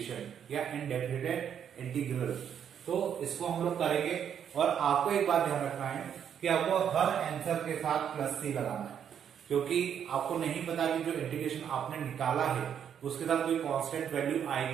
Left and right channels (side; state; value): left; quieter; 8.6 dB